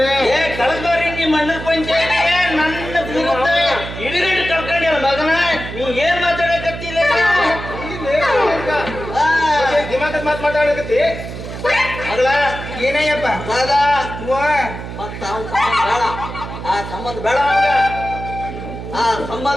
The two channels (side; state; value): right; noise; hum, 9 dB below the sound